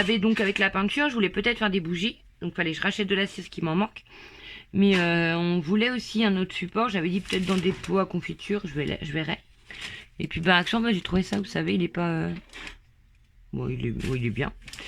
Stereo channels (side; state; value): both; identical; correlation 1.00